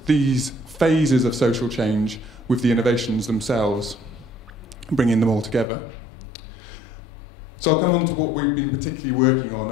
phases of social change with the innovations themselves, bringing them all together. So I'll come on to what we've been particularly working on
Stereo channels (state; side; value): drops out; right; at 5.7 s